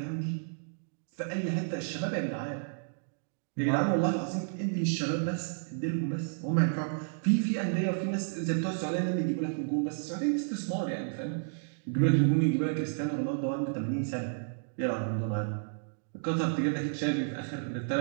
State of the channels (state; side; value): silent; left; digital silence